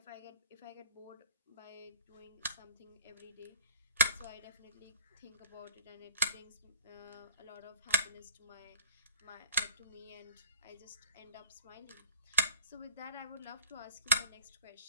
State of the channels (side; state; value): both; inverted; correlation -0.44